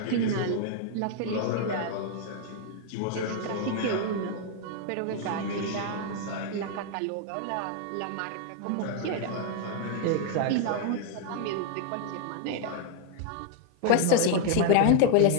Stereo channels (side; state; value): both; different; correlation 0.00